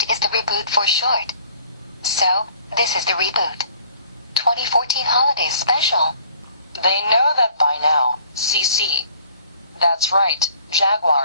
is the Reboot for short. So, this is the Reboot 2014 Holiday Special. They know that by now, Cece. That's right,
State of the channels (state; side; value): inverted; both; correlation -0.55